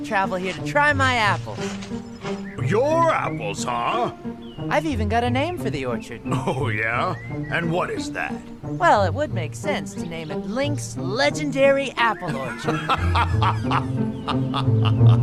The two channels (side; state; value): both; identical; correlation 1.00